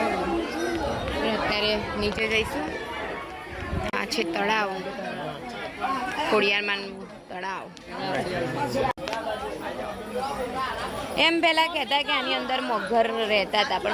અત્યારે નીચે જઈશું. આ છે તળાવ, ખોડિયારમાંનું તળાવ. એમ પેલા કહેતા કે આની અંદર મગર રહેતા હતા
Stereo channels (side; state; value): both; identical; correlation 1.00